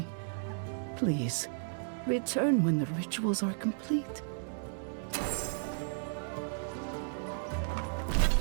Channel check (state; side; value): silent; left; digital silence